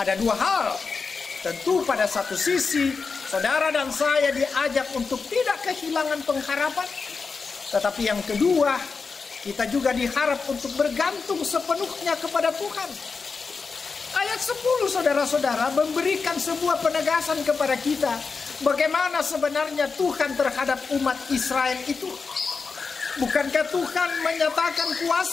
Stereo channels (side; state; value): right; quieter; 4.8 dB